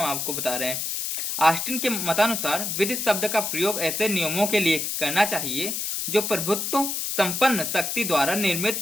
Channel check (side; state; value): left; noise; hiss, 2 dB below the sound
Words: आपको बता रहे हैं। ऑस्टिन के मतानुसार विधि शब्द का प्रयोग ऐसे नियमों के लिए करना चाहिए जो प्रभुत्व संपन्न शक्ति द्वारा